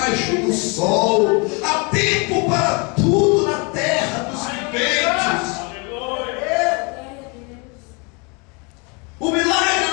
do sol. Há tempo para tudo na terra dos viventes. O milagre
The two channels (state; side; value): quieter; right; 31.6 dB